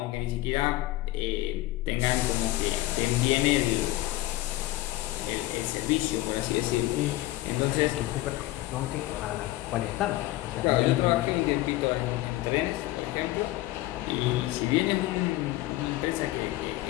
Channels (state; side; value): quieter; right; 17.2 dB